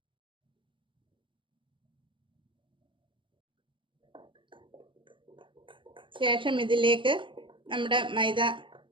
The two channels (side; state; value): left; late; 0.24 ms